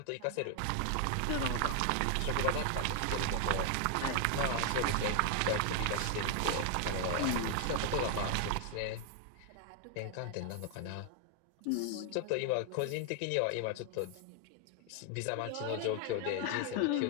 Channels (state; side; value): different; both; correlation 0.00